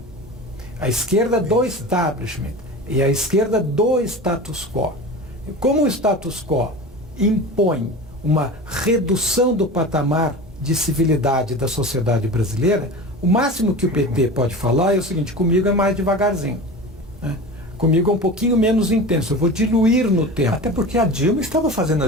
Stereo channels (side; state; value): both; normal; correlation 0.32